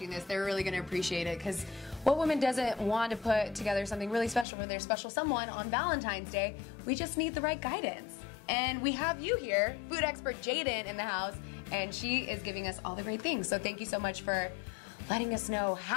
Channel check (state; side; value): drops out; right; at 4.5 s